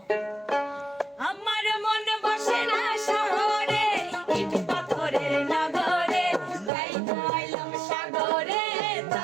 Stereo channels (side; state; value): left; drops out; at 6.7 s